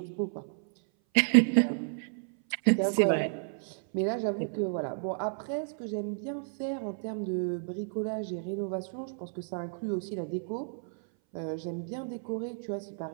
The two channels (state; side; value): silent; left; 57 dB below the other